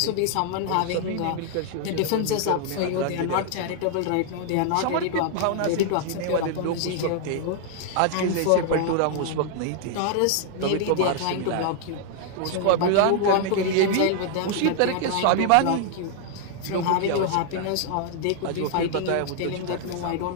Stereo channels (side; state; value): both; different; correlation 0.00